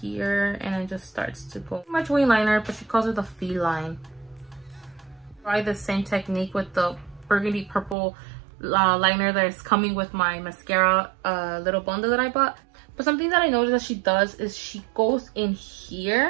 here and then just starts to go pretty much wing liner, but she calls it the feline. Try the same technique with the burgundy purple liner that is coming with my mascara little bundle that I bought. But something that I noticed that she does is she goes in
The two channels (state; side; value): drops out; left; at 8.0 s